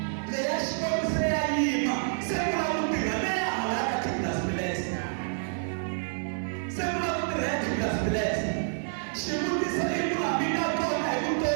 Le ya shkwetu se ya yima. Sekula mutiga. Le ya halaka kitlas bilesa. Sekula mutiga ya kitlas bilesa. Shimuti sa ikula bina kona ikuto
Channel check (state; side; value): silent; left; 59 dB below the other